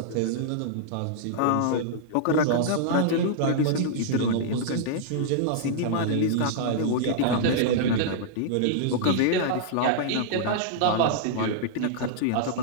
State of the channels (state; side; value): different; both; correlation -0.02